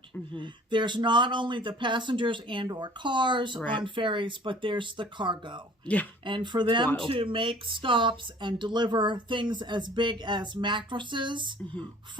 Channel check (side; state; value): both; normal; correlation 0.50